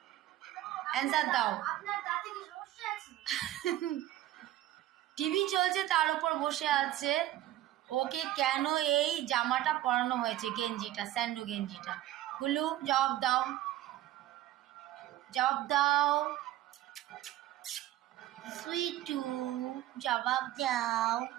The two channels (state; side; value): quieter; left; 14.3 dB